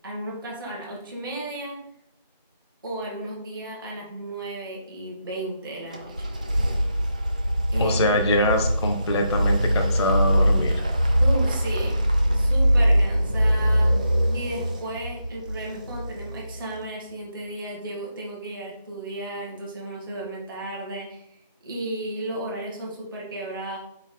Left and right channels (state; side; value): inverted; both; correlation -0.81